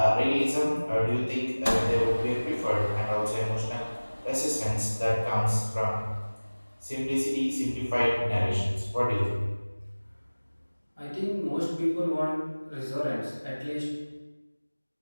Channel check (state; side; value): inverted; both; correlation -1.00